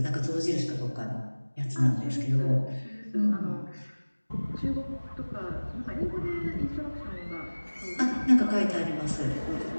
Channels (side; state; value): both; inverted; correlation -1.00